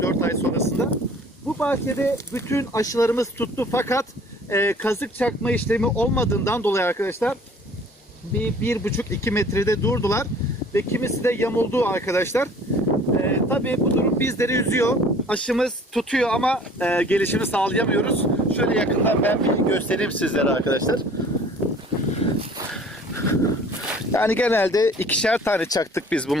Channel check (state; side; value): normal; both; correlation 0.51